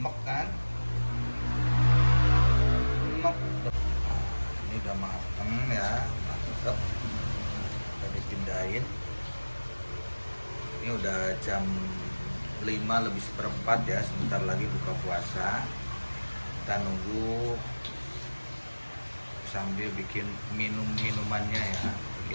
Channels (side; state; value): both; inverted; correlation -1.00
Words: kan? Rumek. Ini udah mateng ya, mantep. Kita dipindahin. Ini udah jam 5 lebih seperempat ya, sebentar lagi buka puasa. Kita nunggu sambil bikin minumannya ya,